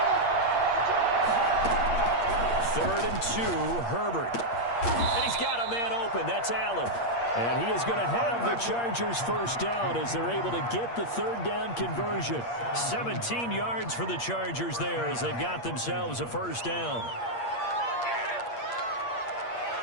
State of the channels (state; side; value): late; right; 8.5 ms